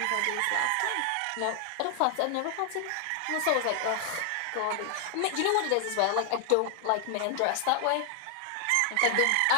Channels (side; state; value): both; different; correlation 0.00